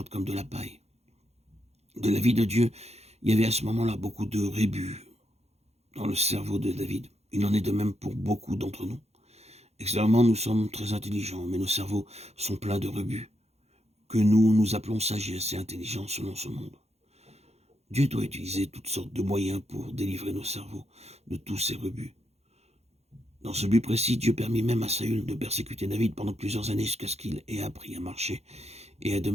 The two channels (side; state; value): left; late; 0.31 ms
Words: comme de la paille. De la vie de Dieu, il y avait à ce moment-là beaucoup de rébus dans le cerveau de David. Il en est de même pour beaucoup d'entre nous. Extérieurement, nous sommes très intelligents, mais nos cerveaux sont pleins de rebut, que nous appelons sagesse et intelligence selon ce monde. Dieu doit utiliser toutes sortes de moyens pour délivrer nos cerveaux de tous ces rebuts. Dans ce but précis, Dieu permit même à Saül de persécuter David pendant plusieurs années jusqu'à ce qu'il ait appris à marcher et à